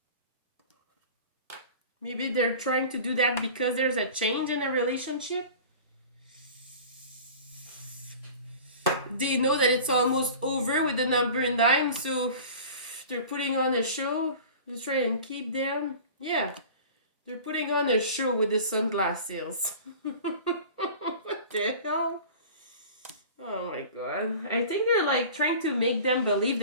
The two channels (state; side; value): inverted; both; correlation -0.40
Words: Maybe they're trying to do that because there's a change in a relationship. They know that it's almost over with the number 9, so they're putting on a show to try and keep them. Yeah, they're putting on a show with the sunglasses. What the hell? Oh my god. I think they're like trying to make them believe